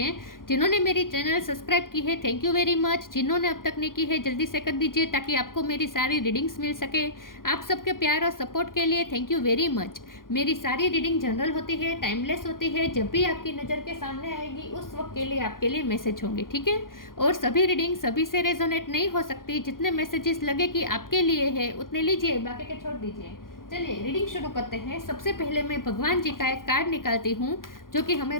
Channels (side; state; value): right; late; 0.91 ms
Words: जिन्होंने मेरी चैनल सब्सक्राइब की है, थैंक यू वेरी मच। जिन्होंने अब तक नहीं की है, जल्दी से कर दीजिए ताकि आपको मेरी सारी रीडिंग्स मिल सके। आप सबके प्यार और सपोर्ट के लिए थैंक यू वेरी मच। मेरी सारी रीडिंग जनरल होती है, टाइमलेस होती है। जब भी आपकी नज़र के सामने आएगी उस वक्त के लिए आपके लिए मैसेज होंगे, ठीक है। और सभी रीडिंग सभी से रेजोनेट नहीं हो सकती। जितने मैसेजेस लगे कि आपके लिए है उतने लीजिए, बाकी के छोड़ दीजिए। चलिए रीडिंग शुरू करते हैं। सबसे पहले मैं भगवान जी का एक कार्ड निकालती हूँ जो कि